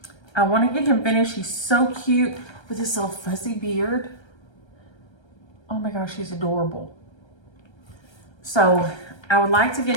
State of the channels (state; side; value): late; right; 1.3 ms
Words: I want to get him finished. He's so cute with this little fuzzy beard. Oh my gosh, he's adorable. So I would like to get